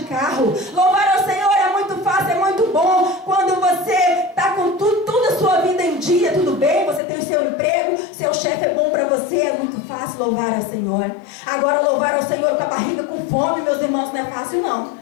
carro. Louvar o Senhor é muito fácil, é muito bom quando você está com toda a sua vida em dia, tudo bem, você tem o seu emprego, seu chefe é bom para você, é muito fácil louvar ao Senhor. Agora, louvar ao Senhor com a barriga com fome, meus irmãos, não é fácil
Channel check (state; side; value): drops out; right; at 7.0 s